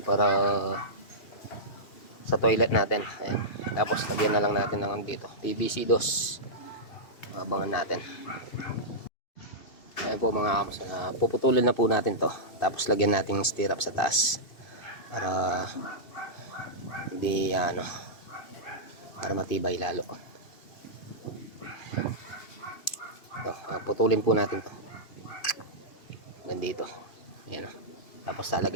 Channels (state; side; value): late; right; 2.8 ms